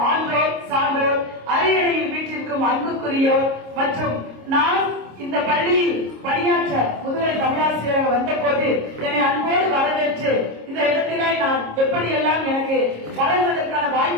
ஆன்றோர் சான்றோர் அரியணையில் வீட்டிற்கும் அன்புக்குரியோர் மற்றும் நான் இந்த பள்ளியில் பணியாற்ற முதுகலை தமிழாசிரியராக வந்த போது என்னை அன்போடு வரவேற்று இந்த இடத்திலே நான் எப்படியெல்லாம் எனக்கு வளர்வதற்கான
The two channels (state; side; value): late; left; 26 ms